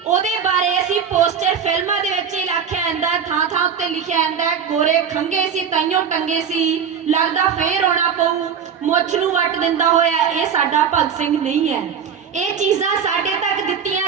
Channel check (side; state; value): left; quieter; 7.3 dB